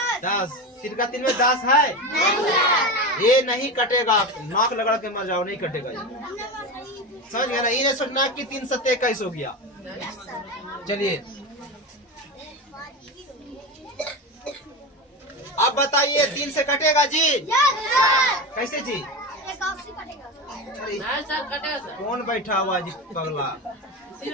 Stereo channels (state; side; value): normal; both; correlation 0.22